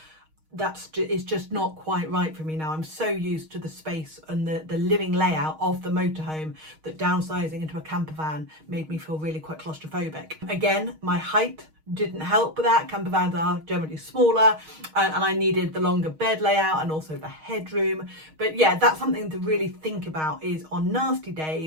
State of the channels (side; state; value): left; late; 6.4 ms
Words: it's just not quite right for me now. I'm so used to the space and the living layout of the motorhome that downsizing into a camper van made me feel really quite claustrophobic. Again, my height didn't help with that. Camper vans are generally smaller, and I needed the longer bed layout and also the headroom. But yeah, that's something to really think about, is on nasty